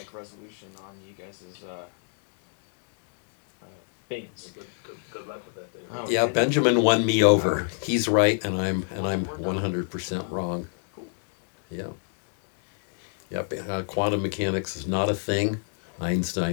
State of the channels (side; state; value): right; silent; 59 dB below the other